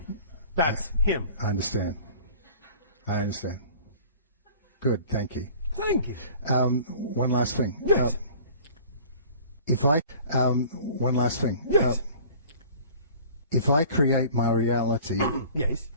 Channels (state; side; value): inverted; both; correlation -0.47